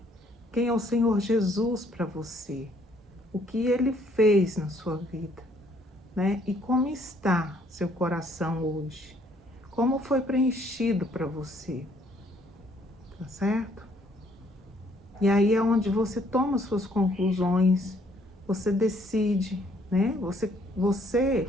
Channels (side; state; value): both; normal; correlation 0.65